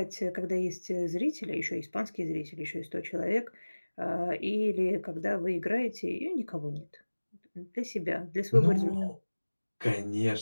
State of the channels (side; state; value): both; inverted; correlation -1.00